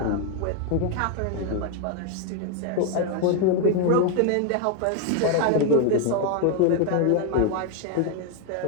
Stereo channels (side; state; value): both; different; correlation 0.01